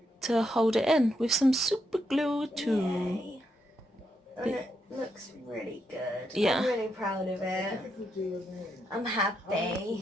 to hold it in with some super glue too. Yay. And it looks really good. Yeah. I'm really proud of it. I'm happy.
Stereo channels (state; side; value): normal; both; correlation 0.80